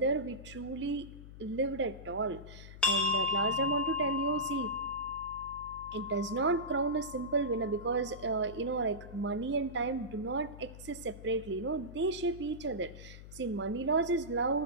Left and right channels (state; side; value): noise; left; hum, 15 dB below the sound